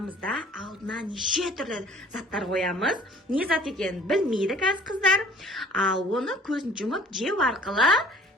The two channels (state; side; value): normal; both; correlation 0.52